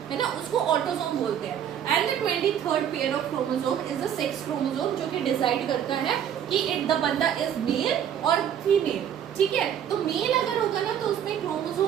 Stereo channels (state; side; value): quieter; left; 9.3 dB